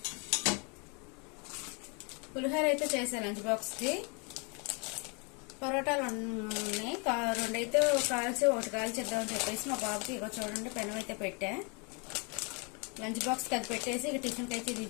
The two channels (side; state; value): right; quieter; 33.4 dB